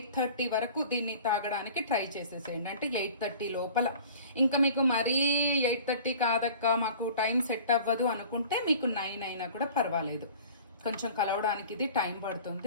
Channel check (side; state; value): both; inverted; correlation -0.44